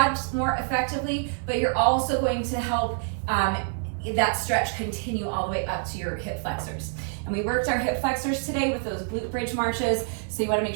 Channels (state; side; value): silent; left; 61 dB below the other